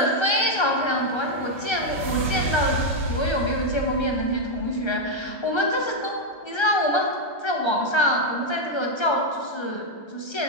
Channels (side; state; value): right; late; 1.3 ms